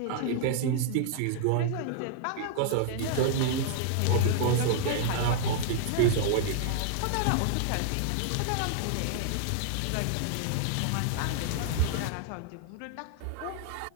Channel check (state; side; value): different; both; correlation -0.01